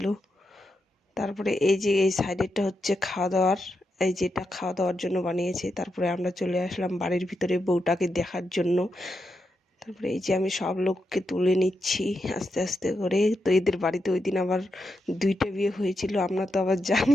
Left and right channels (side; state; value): both; normal; correlation 0.85